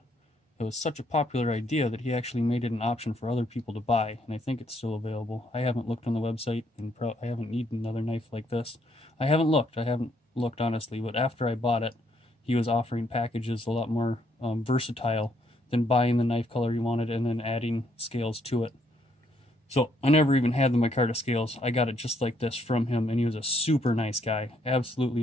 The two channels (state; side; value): normal; both; correlation 0.71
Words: It was such a popular idea that he actually made it an option for other people to buy, and I think it's still available. I haven't looked on the website, and I haven't needed another knife like this. I haven't looked honestly, but after I bought it, he was offering packages a lot more versatile than buying the knife color you wanted and then adding scales to it. So I never even had the micarta scales. I got it just like this from him, and he was a super nice guy. Absolutely